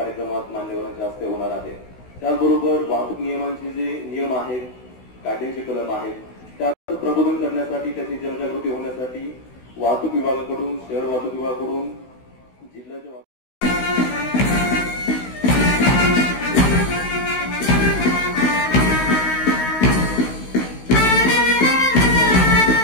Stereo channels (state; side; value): late; right; 16 ms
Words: मान्यवरांच्या हस्ते होणार आहे। त्याचबरोबर वाहतूक नियमांचे जे नियम आहेत, कायद्यांचे कलम आहेत, त्याचं प्रबोधन करण्यासाठी त्याची जनजागृती होण्यासाठी वाहतूक विभागाकडून, शहर वाहतूक विभागाकडून, जिल्ह्याच्या